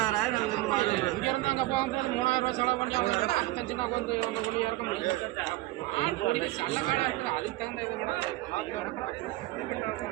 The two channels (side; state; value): left; quieter; 18.2 dB